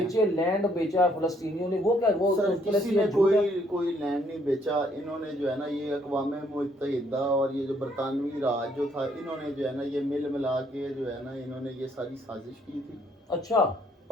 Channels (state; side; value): normal; both; correlation 0.67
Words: बेचे लैंड बेचा है फलस्तीनियों ने, वो क्या वो सर उसके किसी लिए ने झूठ है? कोई लैंड नहीं बेचा, इन्होंने जो है ना ये अक़वाम मुत्तहिदा और ये जो बरतानवी राज जो था इन्होंने जो है ना ये मिल मिला के जो है ना इन्होंने ये सारी साजिश की थी अच्छा